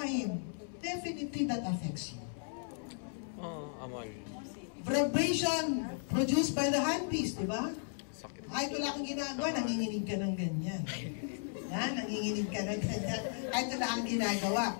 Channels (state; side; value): silent; right; 54 dB below the other